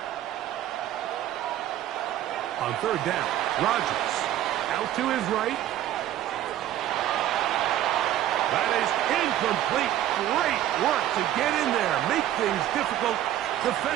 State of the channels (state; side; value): quieter; left; 12.6 dB